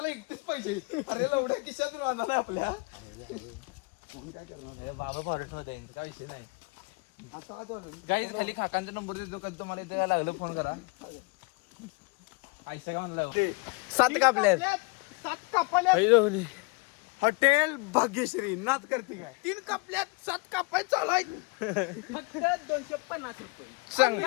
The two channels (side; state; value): right; quieter; 29.1 dB